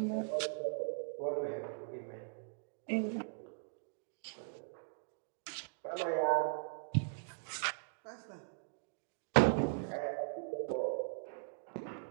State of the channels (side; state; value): left; silent; digital silence